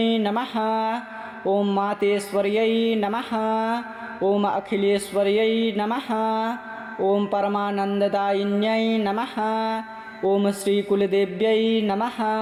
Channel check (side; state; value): both; identical; correlation 1.00